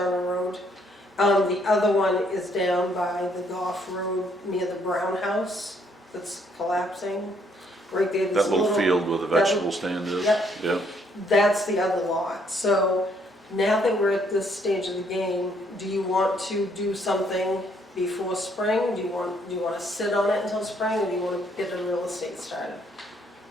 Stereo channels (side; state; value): both; normal; correlation 0.68